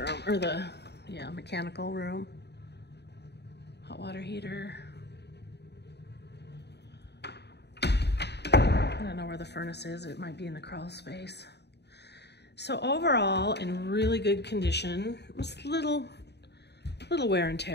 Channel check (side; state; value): right; late; 0.49 ms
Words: or the, yeah, mechanical room. Hot water heater. I don't know where the furnace is. It might be in the crawl space. So overall, in really good condition. It was little wear and